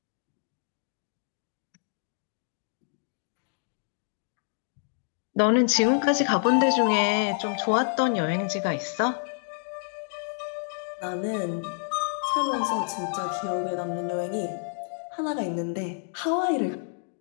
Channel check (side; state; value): right; silent; digital silence